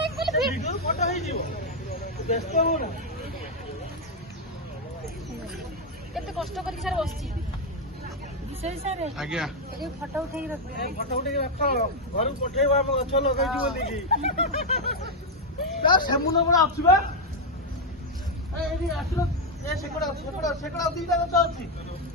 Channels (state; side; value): normal; both; correlation 0.02